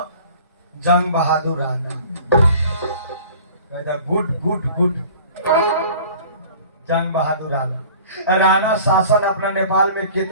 जंग बहादुर राणा। कहता गुड गुड गुड जंग बहादुर राणा। राणा शासन अपना नेपाल में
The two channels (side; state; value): both; inverted; correlation -0.46